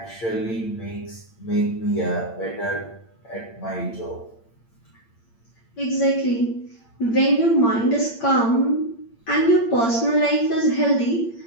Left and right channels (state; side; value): late; right; 8.7 ms